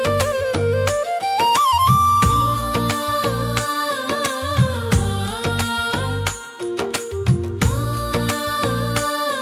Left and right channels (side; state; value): both; identical; correlation 1.00